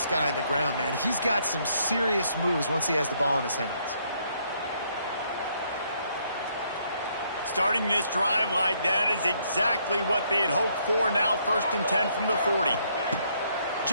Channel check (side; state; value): both; inverted; correlation -0.70